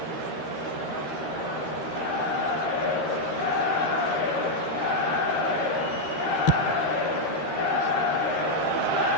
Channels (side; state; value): right; late; 13 ms